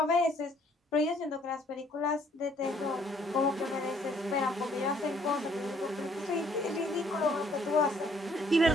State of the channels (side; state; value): both; normal; correlation 0.64